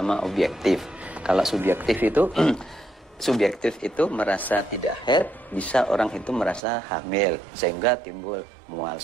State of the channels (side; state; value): left; drops out; at 6.6 s